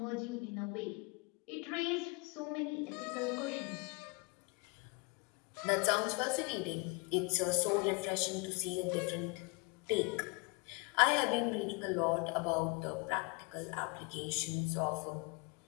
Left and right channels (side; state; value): right; quieter; 29.6 dB